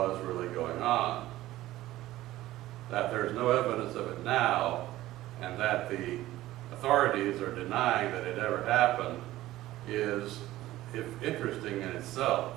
really going on. That there's no evidence of it now, and that the authorities are denying that it ever happened is interesting in itself.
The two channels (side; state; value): left; quieter; 15.8 dB